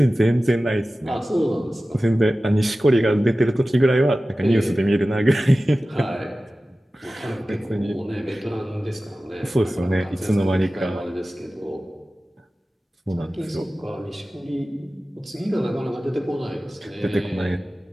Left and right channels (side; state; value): both; normal; correlation 0.96